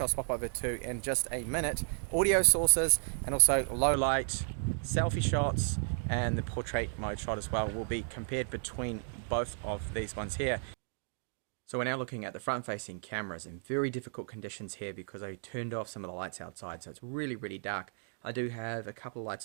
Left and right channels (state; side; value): silent; left; 55 dB below the other